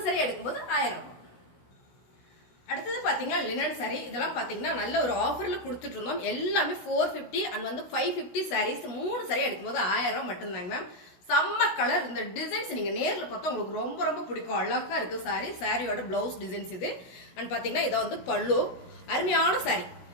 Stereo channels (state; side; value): late; right; 17 ms